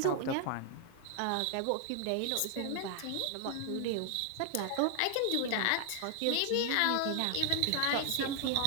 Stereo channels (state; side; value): different; both; correlation 0.00